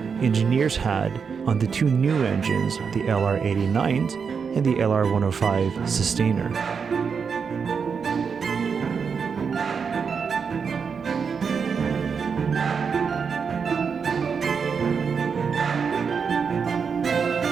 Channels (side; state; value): left; quieter; 6.0 dB